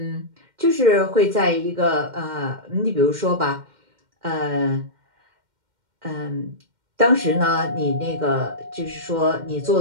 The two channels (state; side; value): late; left; 2.1 ms